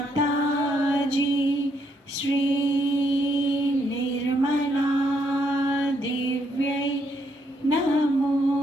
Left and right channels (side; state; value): both; normal; correlation 0.74